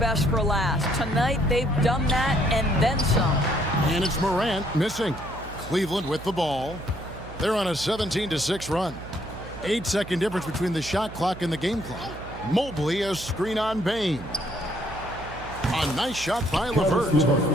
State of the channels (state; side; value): noise; right; hum, 14 dB below the sound